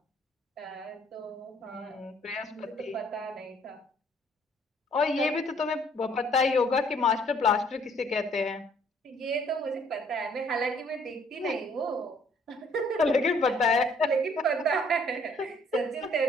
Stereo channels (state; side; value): normal; both; correlation 0.62